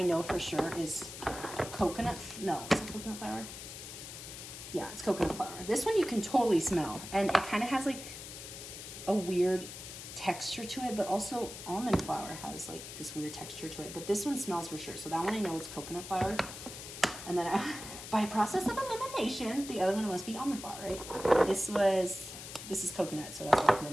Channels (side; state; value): left; noise; hiss, 11 dB below the sound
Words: know for sure is coconut, no, is it coconut flour? Yeah, it's coconut flour. This one you can totally smell, and it kind of has like a weird texture to it, but also almond flour has like this weird texture to it, but this one smells for sure. So that one I know it's coconut flour, and then by process of elimination, the other one must be almond flour, right? This is coconut, so that's what I put